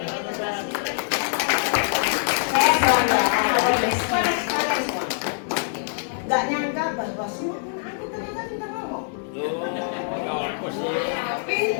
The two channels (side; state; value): right; silent; digital silence